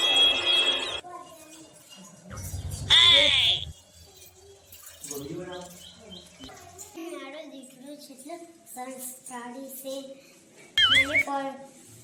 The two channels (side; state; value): both; identical; correlation 1.00